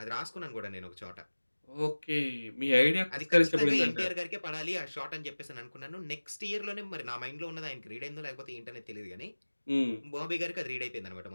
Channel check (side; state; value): both; inverted; correlation -1.00